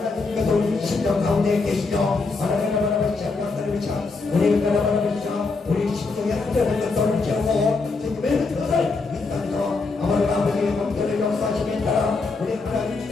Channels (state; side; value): quieter; right; 4.0 dB